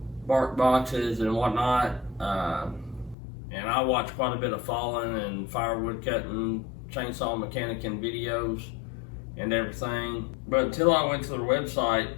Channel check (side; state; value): right; drops out; at 3.2 s